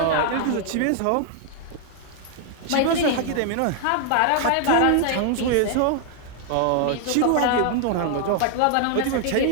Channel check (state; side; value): different; both; correlation 0.00